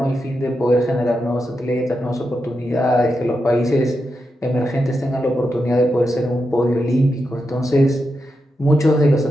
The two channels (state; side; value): normal; both; correlation 0.87